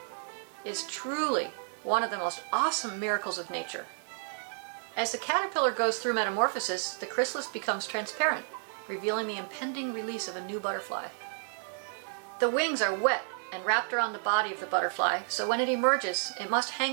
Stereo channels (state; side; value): silent; left; 57 dB below the other